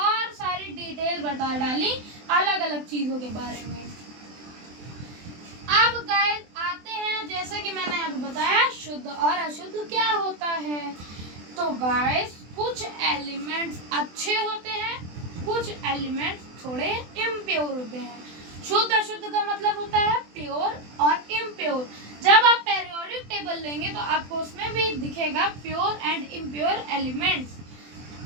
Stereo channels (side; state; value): left; late; 24 ms